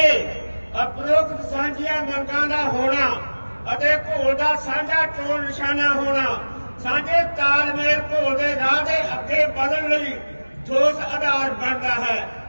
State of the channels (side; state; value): both; inverted; correlation -1.00